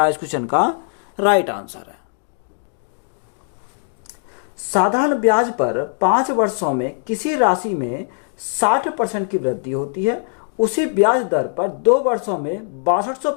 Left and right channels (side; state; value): right; silent; digital silence